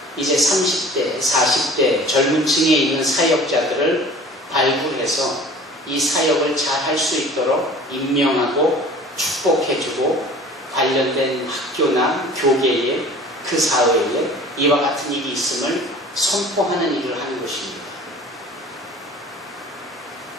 이제 30대, 40대 젊은 층에 있는 사역자들을 발굴해서 이 사역을 잘 할 수 있도록 임명하고 축복해주고 관련된 학교나 교계에 그 사회에 이와 같은 일이 있음을 선포하는 일을 하는 것입니다.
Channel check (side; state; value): both; normal; correlation 0.45